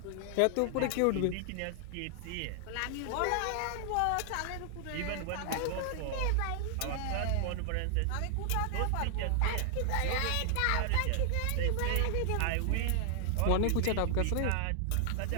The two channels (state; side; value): different; both; correlation 0.00